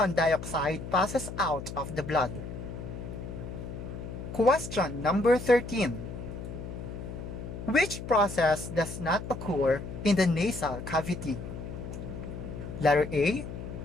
dioxide passes out of the blood. Question number 13. Which process does not occur in the nasal cavity? Letter A,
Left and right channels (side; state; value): left; noise; hum, 8 dB below the sound